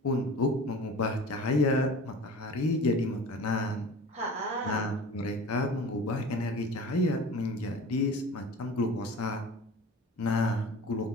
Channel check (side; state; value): both; normal; correlation 0.39